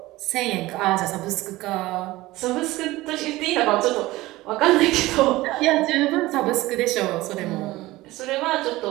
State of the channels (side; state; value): left; quieter; 18.5 dB